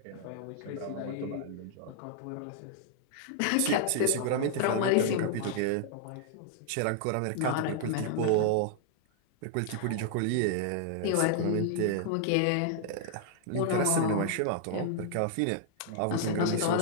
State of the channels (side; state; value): both; different; correlation -0.01